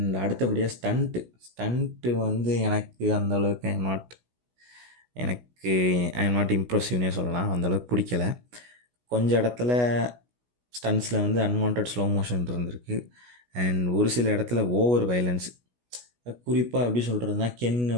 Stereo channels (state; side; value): late; left; 16 ms